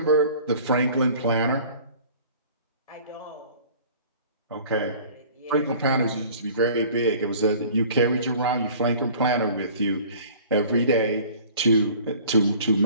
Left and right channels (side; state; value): both; inverted; correlation -0.48